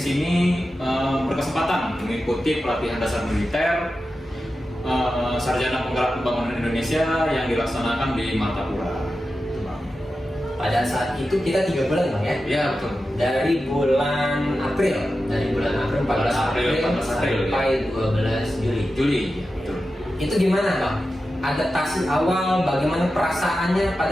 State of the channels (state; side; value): normal; both; correlation 0.92